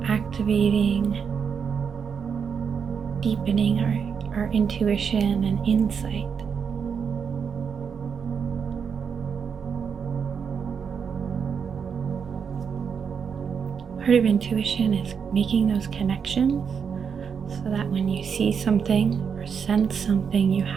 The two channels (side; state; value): left; quieter; 6.7 dB